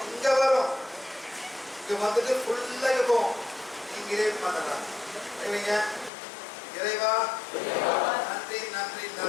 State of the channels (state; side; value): drops out; right; at 6.1 s